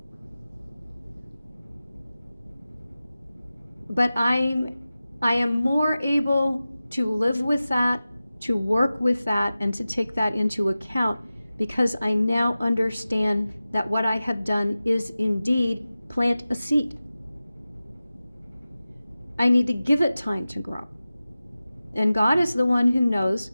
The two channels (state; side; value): inverted; both; correlation -0.95